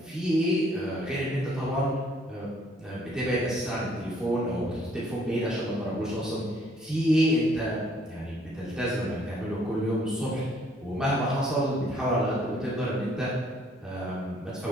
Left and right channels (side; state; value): both; normal; correlation 0.63